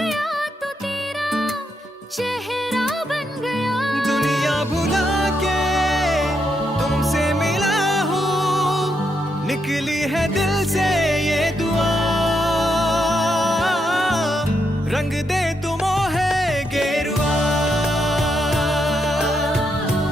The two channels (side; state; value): both; normal; correlation 0.80